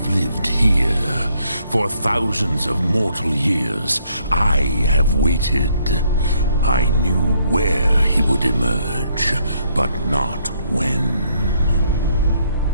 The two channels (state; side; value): inverted; both; correlation -0.70